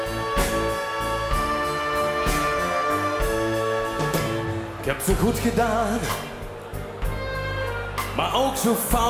Ik heb zo goed gedaan, maar ook zo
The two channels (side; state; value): both; identical; correlation 1.00